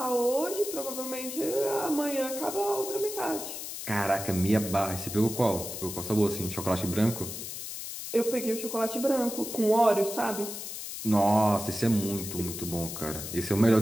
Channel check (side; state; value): left; noise; hiss, 8 dB below the sound